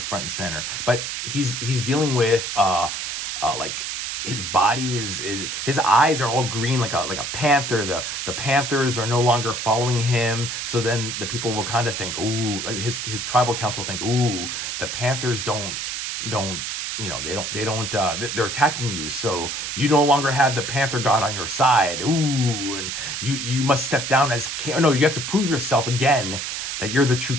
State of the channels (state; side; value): noise; right; hiss, 4 dB below the sound